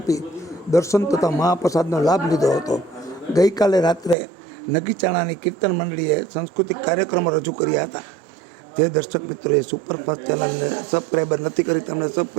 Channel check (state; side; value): drops out; left; at 4.2 s